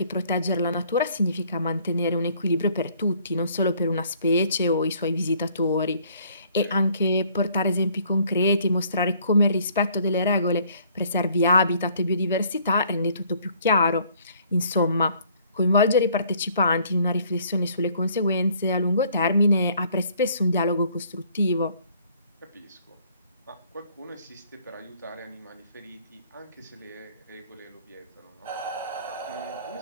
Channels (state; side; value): inverted; both; correlation -0.60